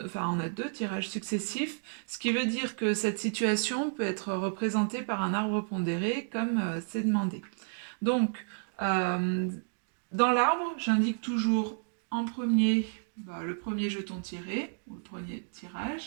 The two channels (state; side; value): silent; left; digital silence